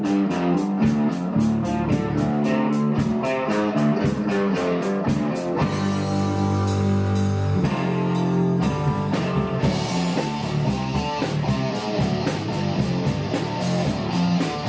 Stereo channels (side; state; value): both; identical; correlation 1.00